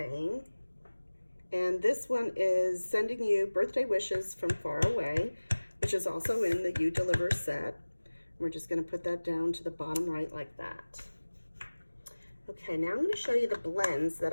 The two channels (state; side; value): inverted; both; correlation -1.00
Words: And this one is sending you birthday wishes from far away. which is also in the You Deliver set. We're just going to put that down to the bottom right like that. Okay, now I'm going to show you the blends that